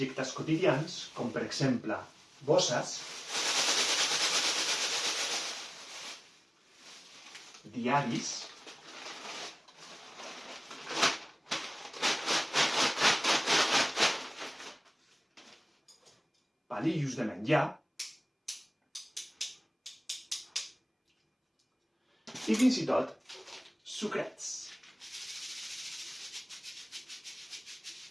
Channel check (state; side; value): identical; both; correlation 1.00